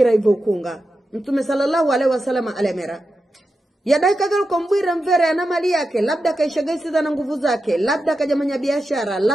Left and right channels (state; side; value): normal; both; correlation 0.90